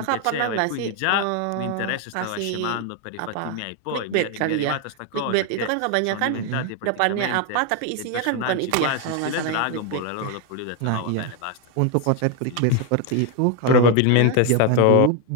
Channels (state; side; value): different; both; correlation 0.01